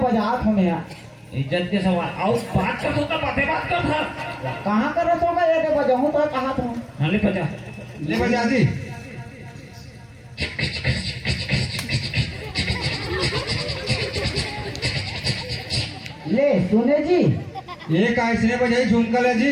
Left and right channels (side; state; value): both; identical; correlation 1.00